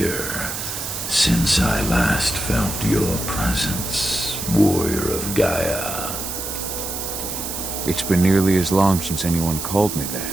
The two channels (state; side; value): noise; right; hiss, 5 dB below the sound